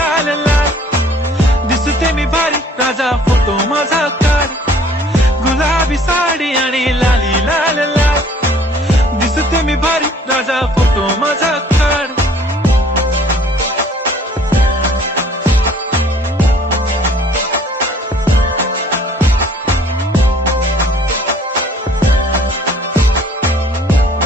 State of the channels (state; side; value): normal; both; correlation 0.56